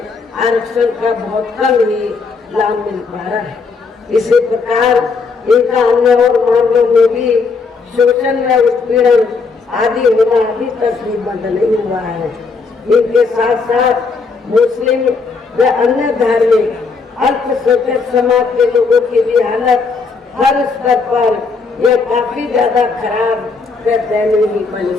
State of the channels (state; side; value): quieter; right; 4.6 dB